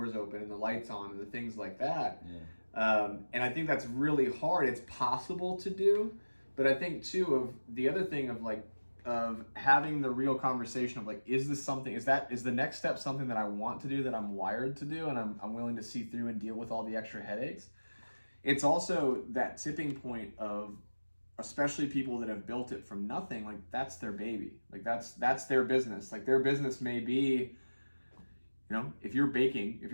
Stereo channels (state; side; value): inverted; both; correlation -1.00